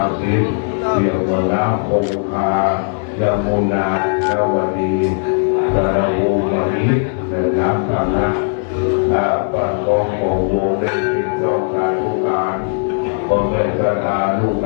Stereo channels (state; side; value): silent; right; digital silence